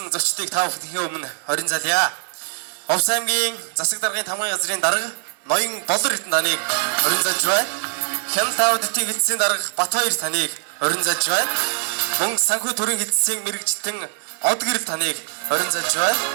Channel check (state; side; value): silent; left; digital silence